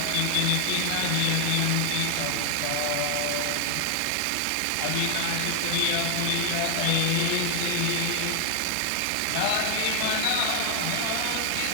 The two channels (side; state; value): both; different; correlation 0.00